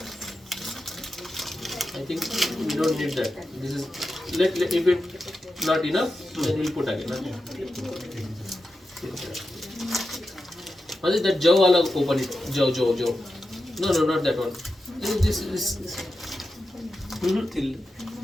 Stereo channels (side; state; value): both; normal; correlation 0.90